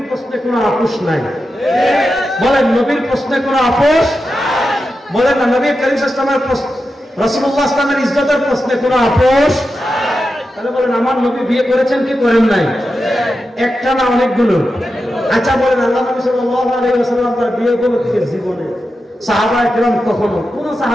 প্রশ্নে কোনো আপোষ নাই। বলেন, নবীর প্রশ্নে কোনো আপোষ বলেন না। নবী করিম সাল্লাল্লাহু আলাইহি ওয়াসাল্লামের রাসূলুল্লাহ সাল্লাল্লাহু আলাইহি ওয়াসাল্লামের ইজ্জতের প্রশ্নে কোনো আপোষ। তাহলে বলেন, আমার নবী বিয়ে করেছেন কি করেন নাই? একটা না, অনেকগুলো। আচ্ছা বলেন, আল্লাহ নবী সাল্লাল্লাহু আলাইহি ওয়াসাল্লাম তার বিয়ে করেছেন জীবনে? সাহাবায়ে কেরাম কখনো কোন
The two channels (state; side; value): normal; both; correlation 0.90